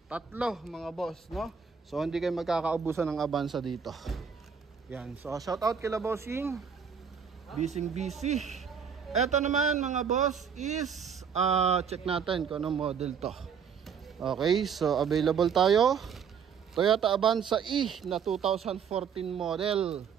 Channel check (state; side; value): quieter; left; 6.9 dB